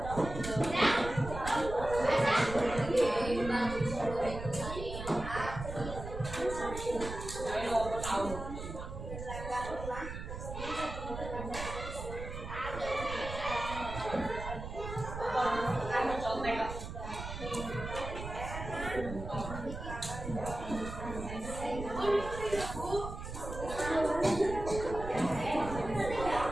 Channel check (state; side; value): noise; right; rumble, 8 dB below the sound